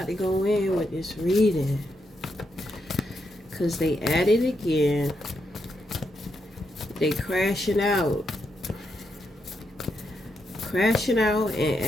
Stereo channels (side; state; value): both; normal; correlation 0.82